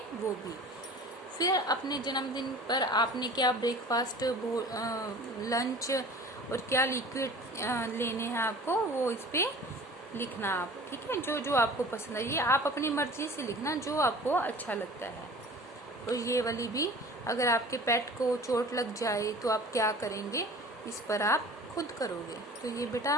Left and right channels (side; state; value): both; normal; correlation 0.43